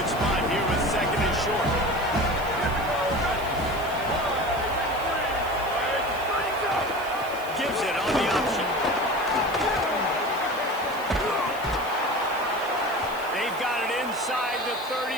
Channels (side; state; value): right; noise; hiss, 18 dB below the sound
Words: spot here with second and short. Gives it on the option. They've got it inside the